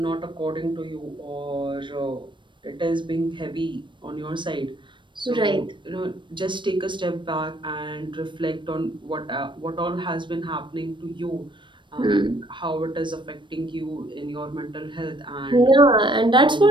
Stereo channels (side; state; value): left; late; 0.23 ms